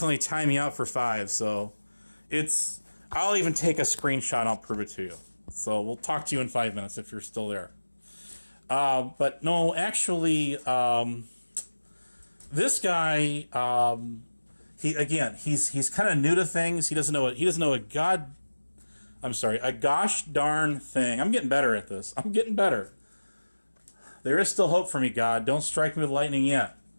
only time me out for 5, so I'll even take a screenshot and I'll prove it to you. So we'll talk to you in 5 minutes if you're still there. But no, actually, this guy, he's kind of new to things. He doesn't know a gosh darn thing. I'm getting better at this. I'm getting better. There is still hope for me, God. Don't strike me with lightning yet.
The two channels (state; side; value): inverted; both; correlation -1.00